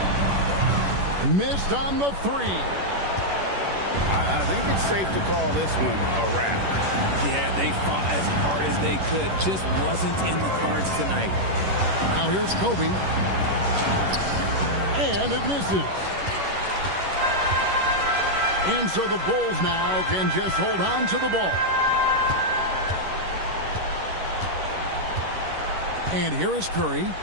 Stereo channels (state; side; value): late; left; 11 ms